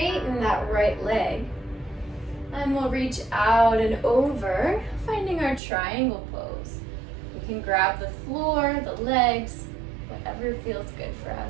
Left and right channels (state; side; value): drops out; left; at 5.6 s